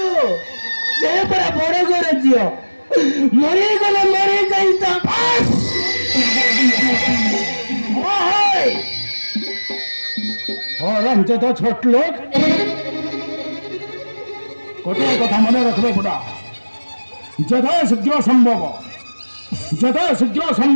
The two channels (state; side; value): inverted; both; correlation -1.00